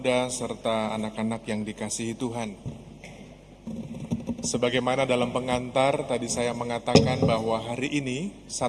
serta anak-anak yang dikasihi Tuhan. Sebagaimana dalam pengantar, tadi saya mengatakan bahwa hari ini,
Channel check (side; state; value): both; identical; correlation 1.00